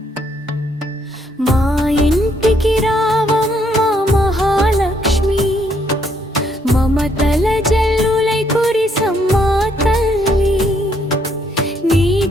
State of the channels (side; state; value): both; normal; correlation 0.71